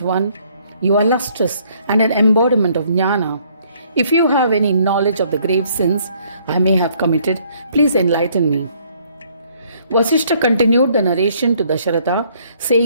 one, you are lustrous and an embodiment of jnana. If you have any knowledge of the grave sins I may have committed, please enlighten me." Vasishta continued the narration to Dasharatha,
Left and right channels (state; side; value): inverted; both; correlation -0.64